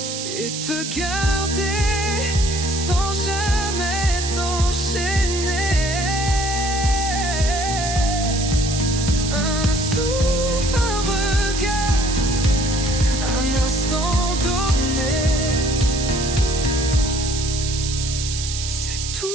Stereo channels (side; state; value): right; noise; hiss, 5 dB below the sound